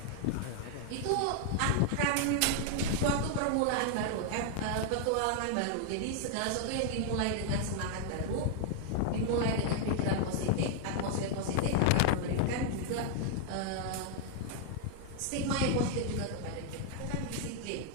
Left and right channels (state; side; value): different; both; correlation 0.00